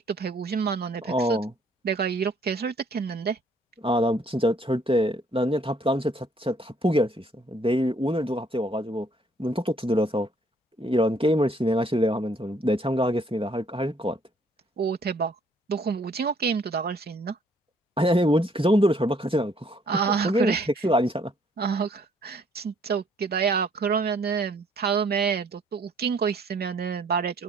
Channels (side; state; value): both; normal; correlation 0.63